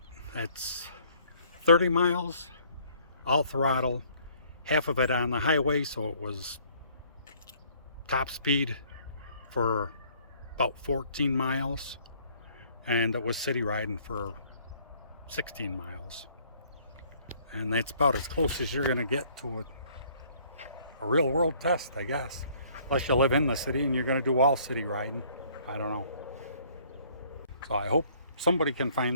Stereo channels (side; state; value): both; inverted; correlation -0.60